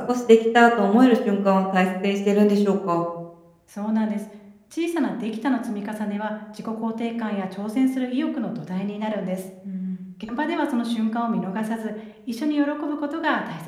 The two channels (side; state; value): both; identical; correlation 1.00